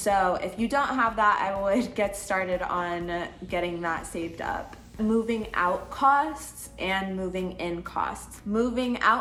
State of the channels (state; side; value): identical; both; correlation 1.00